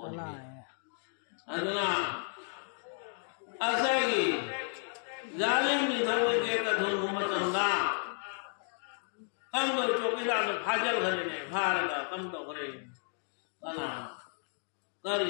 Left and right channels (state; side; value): silent; right; 56 dB below the other